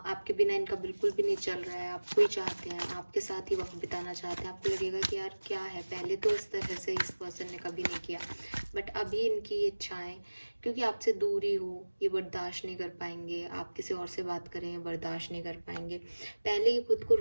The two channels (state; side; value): inverted; both; correlation -1.00